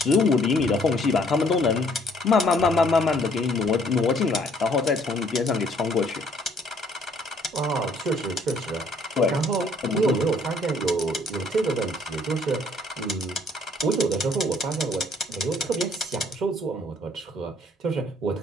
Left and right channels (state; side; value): normal; both; correlation 0.62